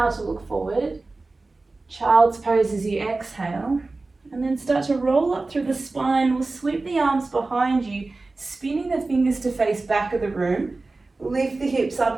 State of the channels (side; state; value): left; quieter; 3.4 dB